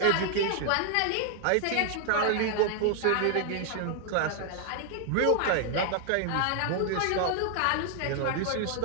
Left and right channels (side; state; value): both; different; correlation 0.00